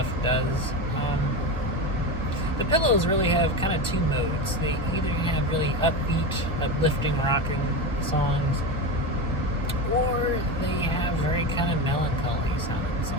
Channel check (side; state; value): both; normal; correlation 0.20